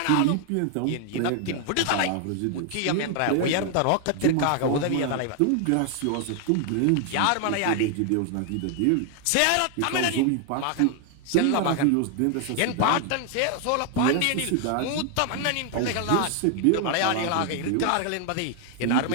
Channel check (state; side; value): different; both; correlation 0.00